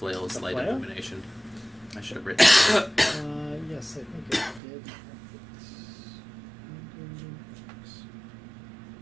The light flail? illumination? I should have written it. Yes, I think it did.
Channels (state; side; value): drops out; left; at 4.6 s